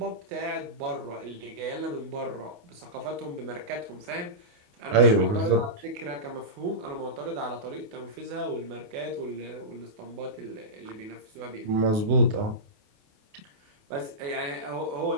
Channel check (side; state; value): left; late; 28 ms